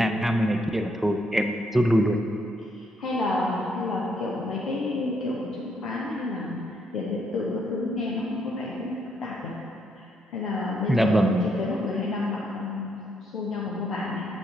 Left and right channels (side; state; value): both; normal; correlation 0.74